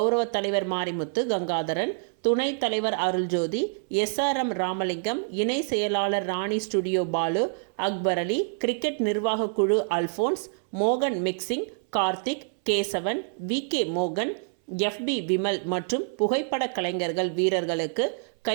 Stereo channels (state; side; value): silent; left; 60 dB below the other